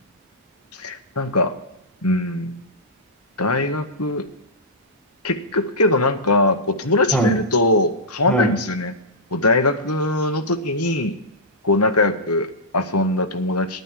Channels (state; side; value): normal; both; correlation -0.13